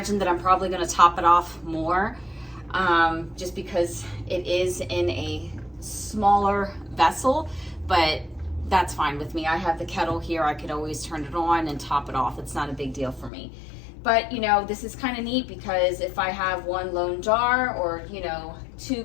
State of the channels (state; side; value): drops out; right; at 13.3 s